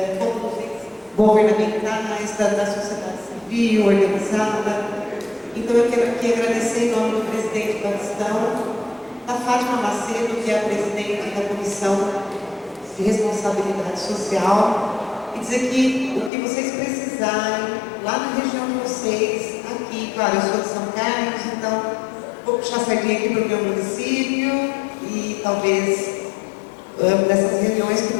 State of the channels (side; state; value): right; drops out; at 16.3 s